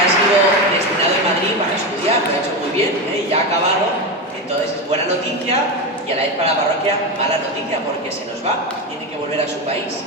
noticia y a la vez para la parroquia mala noticia, porque se nos va, tiene que volver a su país.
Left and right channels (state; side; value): normal; both; correlation 0.16